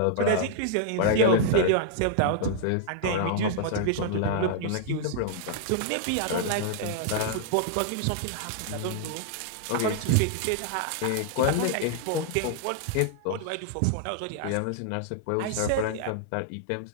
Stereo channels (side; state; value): both; different; correlation -0.01